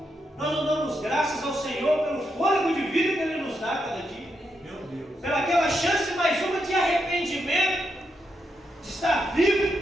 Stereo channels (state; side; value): normal; both; correlation 0.82